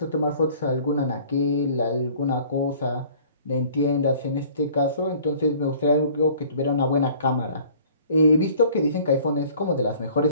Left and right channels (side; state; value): both; inverted; correlation -0.52